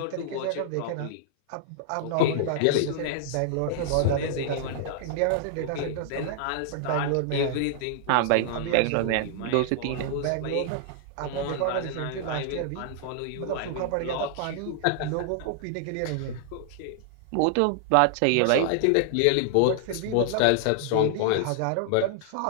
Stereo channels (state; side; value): different; both; correlation -0.01